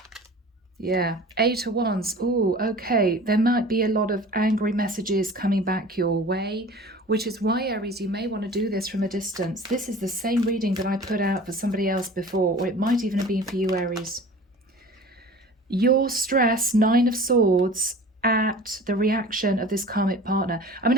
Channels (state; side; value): normal; both; correlation 0.41